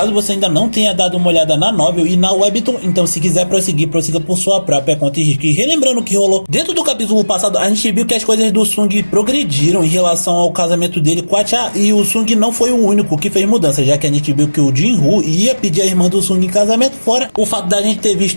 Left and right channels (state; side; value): inverted; both; correlation -1.00